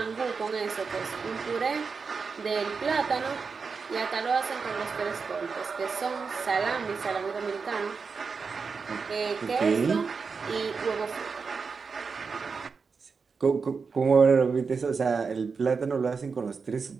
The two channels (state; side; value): quieter; left; 5.1 dB